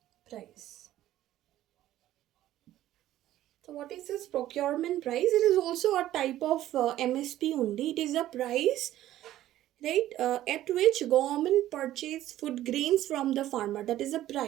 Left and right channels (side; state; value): left; quieter; 13.7 dB